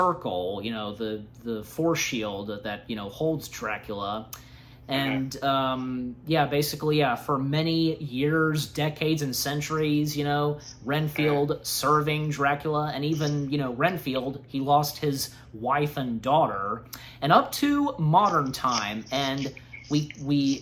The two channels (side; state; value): both; identical; correlation 1.00